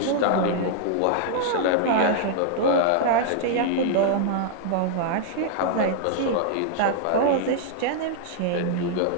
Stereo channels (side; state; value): both; different; correlation -0.01